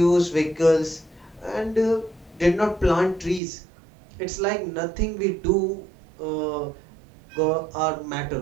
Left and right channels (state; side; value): drops out; left; at 3.4 s